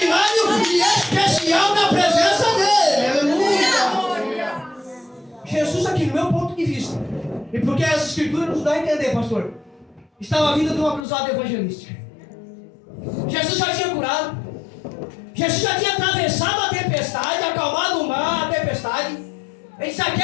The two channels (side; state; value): right; drops out; at 11.0 s